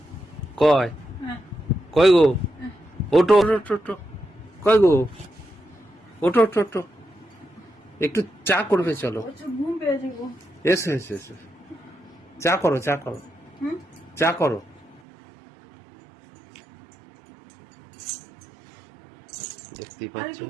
কয় কয় গো, ওটো ওটো ওটো, কয় গো, ওটো ওটো ওটো, একটু চা করবে, চলো। ঘুম পেয়েছে গো। এসো এসো এসো, চা করো, চা করো, চা করো। দেখতেই পাচ্ছ।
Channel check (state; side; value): drops out; left; at 15.0 s